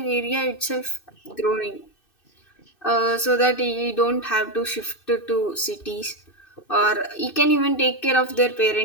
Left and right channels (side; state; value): right; late; 2.6 ms